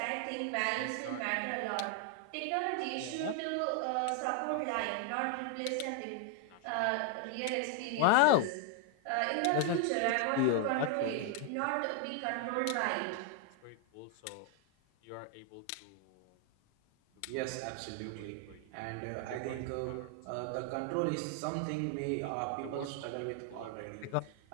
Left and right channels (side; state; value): both; different; correlation 0.00